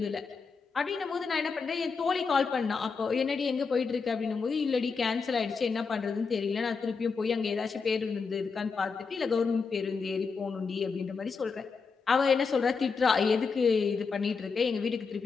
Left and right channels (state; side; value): quieter; right; 5.1 dB